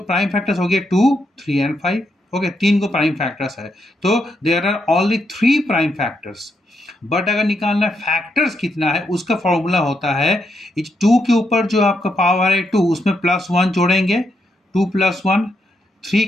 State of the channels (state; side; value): normal; both; correlation 0.80